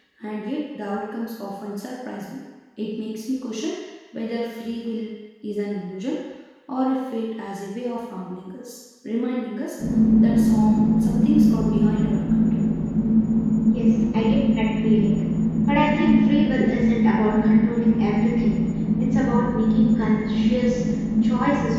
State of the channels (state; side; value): identical; both; correlation 1.00